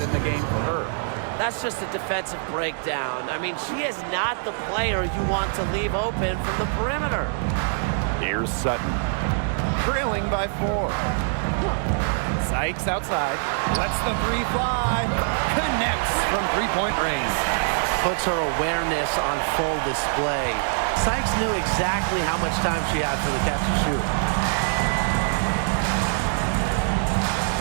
in the game for her. That's just a defensive breakdown. I mean, she is not the player you want to leave open from the perimeter. Here's Sutton. Trailing by 4. Sykes outside. Lets the 3 fly. Connects from three-point range. Puts her awareness on full display. Sykes knew exactly how much time she had for the catch and shoot.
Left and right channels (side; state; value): left; silent; digital silence